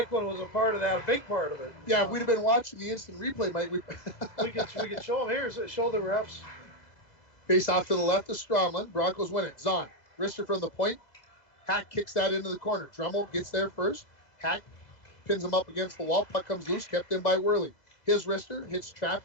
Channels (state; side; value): late; right; 2.0 ms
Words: was a part of that, a big part of it. Yeah, if we'd have been watching the instant replay, Mike, we could show them here. Show the refs. Face off to the left of Stromlin. Broncos win it. Zahn. Wrister from the point. Hack kicks that into the corner. Dremel gets there first. Hack pins him up against the wall. Puck comes loose. Kept in by Worley. His wrister hits